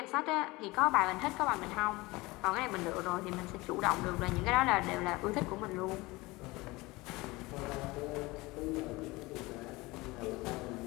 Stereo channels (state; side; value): quieter; right; 22.1 dB